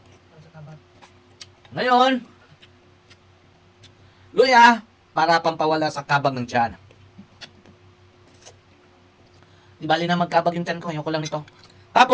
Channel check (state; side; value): identical; both; correlation 1.00